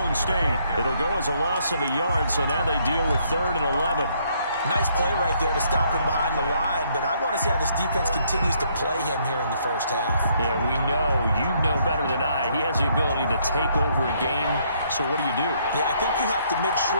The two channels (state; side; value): inverted; both; correlation -0.69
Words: State. It'll go as a loss of a yard, so now they deal with 3rd and 11. Nice play right there to stop him behind the line, but I want to see how this defense continues to play him here in the first half. Yeah, we know, you know better than I, he has the ability to take over a game, so what do you do? Yeah, I think you have to make